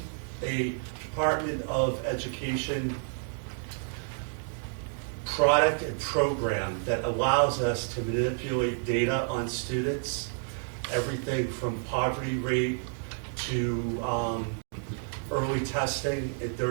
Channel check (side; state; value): left; silent; 58 dB below the other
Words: Department of Education product and program that allows us to manipulate data on students, everything from poverty rate to early testing in